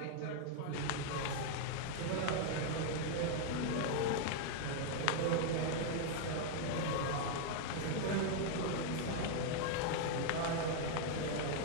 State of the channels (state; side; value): different; both; correlation 0.00